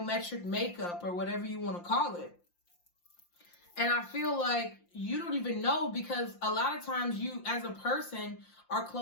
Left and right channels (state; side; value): late; right; 5.7 ms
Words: makeup or whatever you want to call it. And I feel like you don't even know, because a lot of times you as a person are